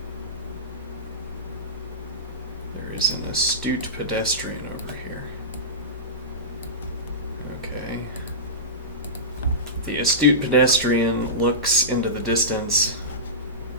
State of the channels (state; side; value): normal; both; correlation -0.18